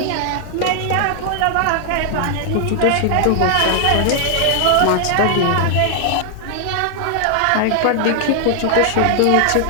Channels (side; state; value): both; different; correlation 0.00